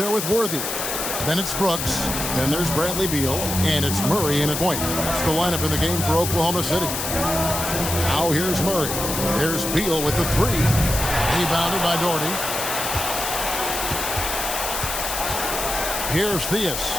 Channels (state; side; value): noise; left; hiss, 3 dB below the sound